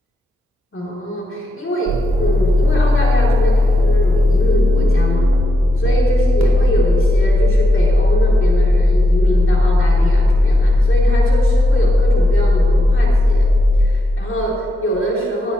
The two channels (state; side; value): normal; both; correlation 0.85